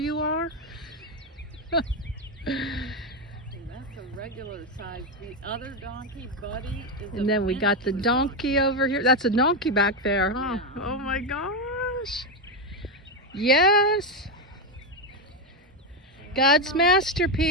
are? That's a regular size. The other donkey, Buddy, is And then we got the donkey over here. That's a donkey back there, huh? Yeah. Oh my gosh. Yes. God's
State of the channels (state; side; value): normal; both; correlation 0.07